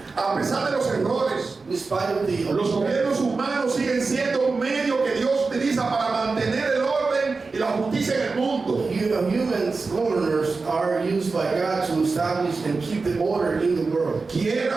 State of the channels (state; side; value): quieter; left; 4.1 dB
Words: A pesar de los errores, In spite of the los gobiernos humanos siguen siendo un medio que Dios utiliza para mantener el orden y la justicia en el mundo. humans, governors are used by God to establish and keep the order in the world.